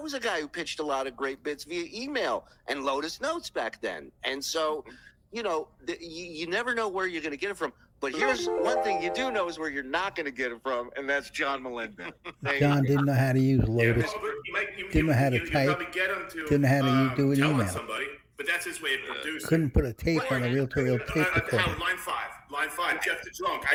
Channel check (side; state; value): both; identical; correlation 1.00